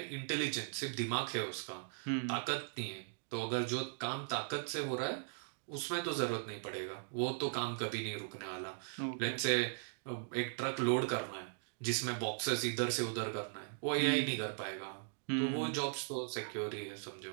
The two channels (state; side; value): silent; left; digital silence